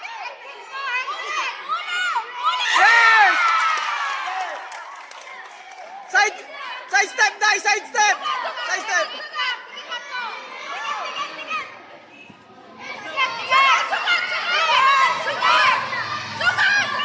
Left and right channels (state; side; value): identical; both; correlation 1.00